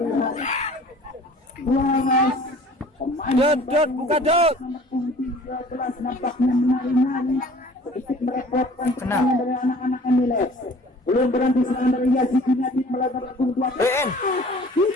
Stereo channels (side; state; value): both; normal; correlation 0.49